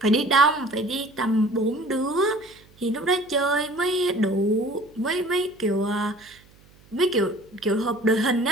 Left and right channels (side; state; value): right; noise; hum, 28 dB below the sound